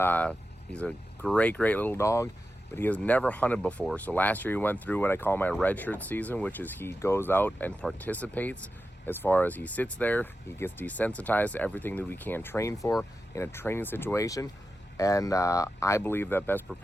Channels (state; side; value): normal; both; correlation 0.91